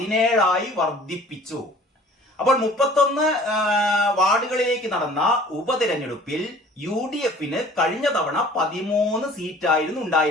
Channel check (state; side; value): normal; both; correlation 0.49